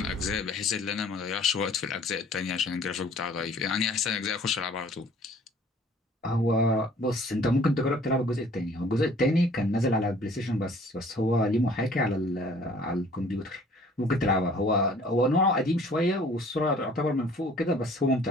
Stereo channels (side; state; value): both; normal; correlation 0.54